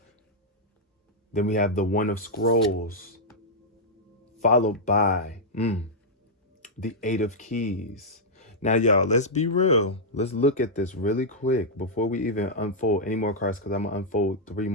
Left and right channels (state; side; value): normal; both; correlation -0.06